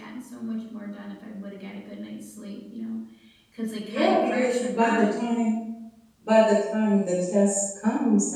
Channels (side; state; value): both; identical; correlation 1.00